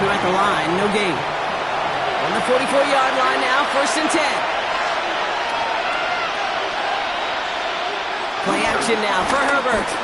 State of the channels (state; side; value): identical; both; correlation 1.00